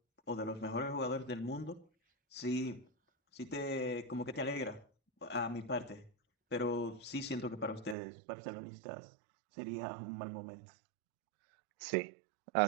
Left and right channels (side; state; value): left; drops out; at 8.0 s